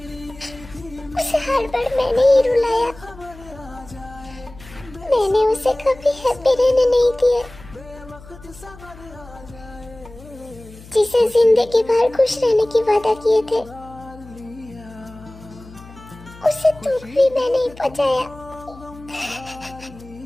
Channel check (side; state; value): left; noise; hum, 19 dB below the sound